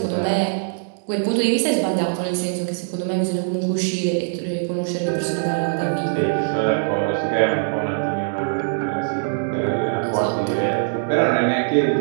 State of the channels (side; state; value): left; silent; digital silence